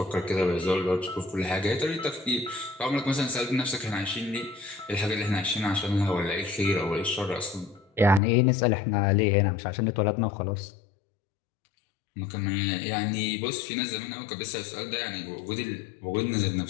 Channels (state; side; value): drops out; right; at 8.2 s